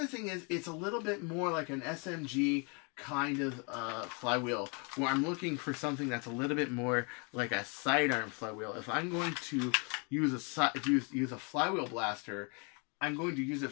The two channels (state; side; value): quieter; right; 34.2 dB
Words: thing is, it's a little bit more like an SMG kind of flywheel, where I'm looking for something that's a little bit more like a sidearm flywheel. If I'm going to use a flywheel blaster, I'm going to use it